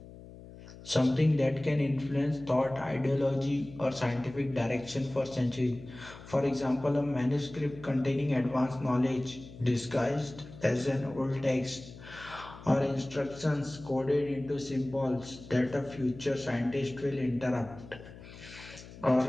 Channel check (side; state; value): left; noise; hum, 17 dB below the sound